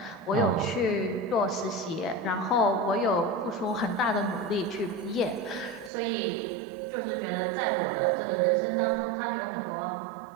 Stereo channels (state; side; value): drops out; left; at 5.9 s